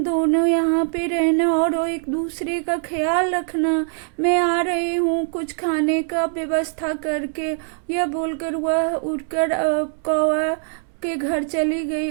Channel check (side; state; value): left; silent; 64 dB below the other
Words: दोनों यहाँ पे रहना और एक दूसरे का ख्याल रखना। मैं आ रही हूँ कुछ खाने का व्यवस्था करके। यह बोलकर वह उठकर कौवा के घर चली गई